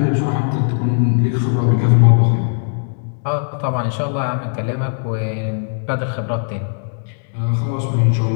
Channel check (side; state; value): right; silent; 66 dB below the other